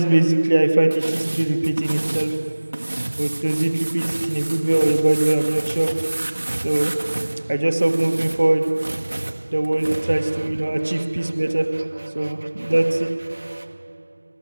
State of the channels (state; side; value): inverted; both; correlation -1.00